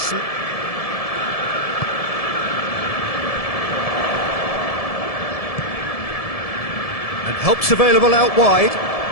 And help's available out wide.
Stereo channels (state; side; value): late; right; 1.7 ms